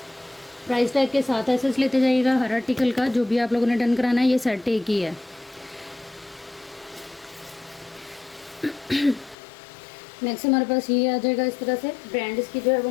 प्राइस टैग के साथ एसेस लेते जाइएगा हर आर्टिकल का। जो भी आप लोगों ने डन कराना है, ये सेट एक ही है। नेक्स्ट हमारे पास ये आ जाएगा इस तरह से। ब्रांड इसकी जो है वो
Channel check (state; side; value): drops out; right; at 9.3 s